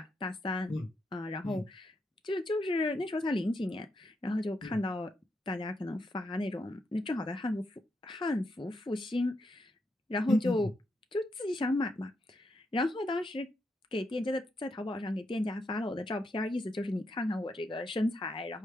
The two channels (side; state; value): both; normal; correlation 0.81